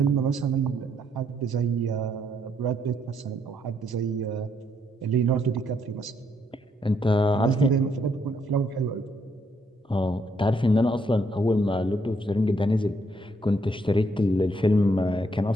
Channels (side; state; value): both; normal; correlation 0.72